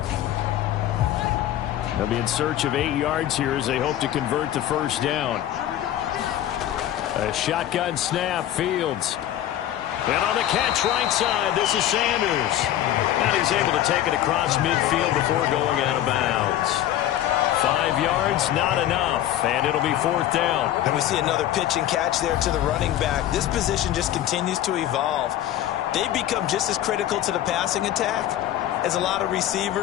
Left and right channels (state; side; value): quieter; right; 12.3 dB